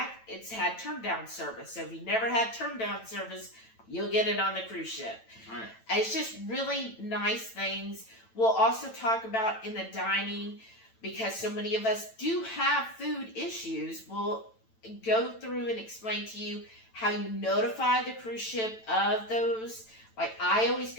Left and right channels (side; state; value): right; late; 9.0 ms